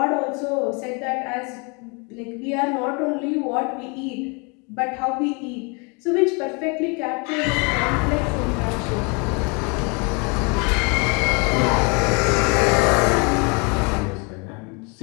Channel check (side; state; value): right; quieter; 32.2 dB